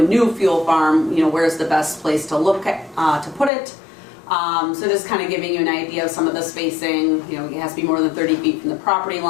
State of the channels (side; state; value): right; drops out; at 3.5 s